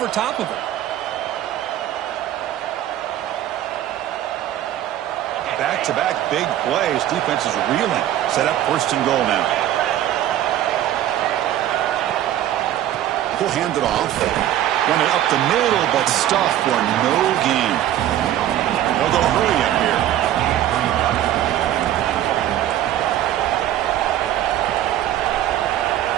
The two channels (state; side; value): quieter; left; 12.3 dB